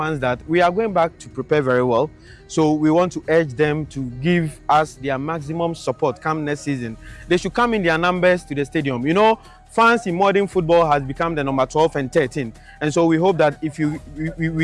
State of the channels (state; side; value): identical; both; correlation 1.00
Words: that we are going back to prepare very well. So we want to urge them to give us their maximum support come next season. They should come in their numbers to the stadium. You know, fans in modern football has become the number 12 and 13, and so we hope that if